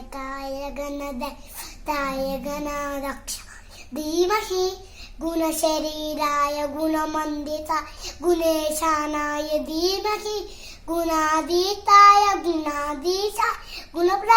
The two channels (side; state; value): both; identical; correlation 1.00